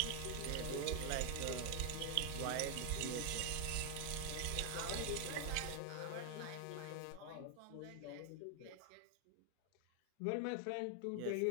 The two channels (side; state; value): both; different; correlation 0.00